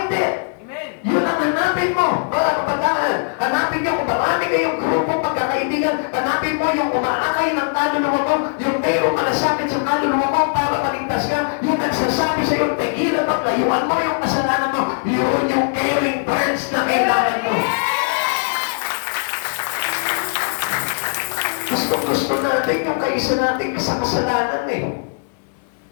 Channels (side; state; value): right; silent; digital silence